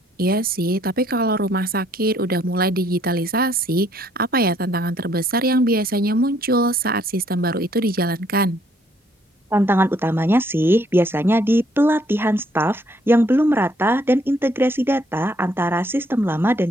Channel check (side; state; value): both; normal; correlation 0.66